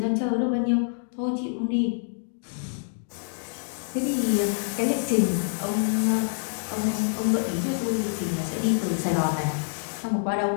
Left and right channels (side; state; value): right; silent; digital silence